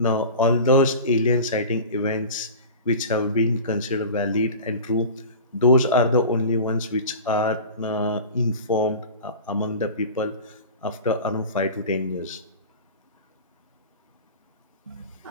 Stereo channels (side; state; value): both; inverted; correlation -0.35